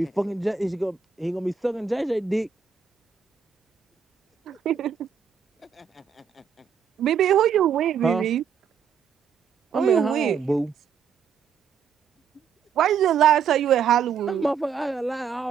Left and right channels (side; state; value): left; quieter; 7.0 dB